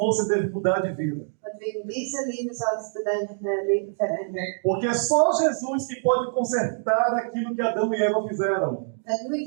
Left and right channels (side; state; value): left; silent; digital silence